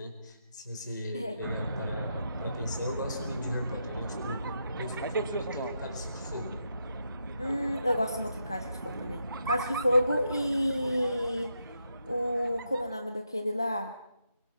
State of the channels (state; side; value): inverted; both; correlation -0.82